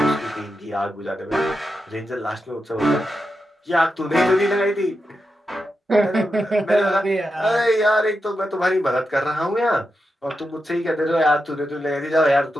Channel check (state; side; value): normal; both; correlation 0.88